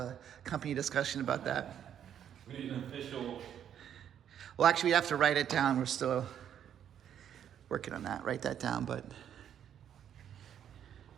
company discussion about that. We need an official. Well, actually, we have to write it down. We're still working on that. Write that down, but.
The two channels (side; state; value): left; quieter; 9.5 dB